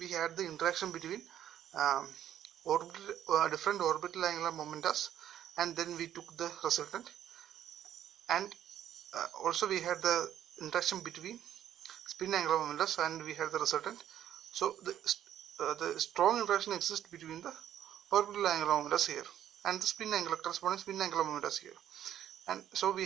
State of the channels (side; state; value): left; quieter; 11.0 dB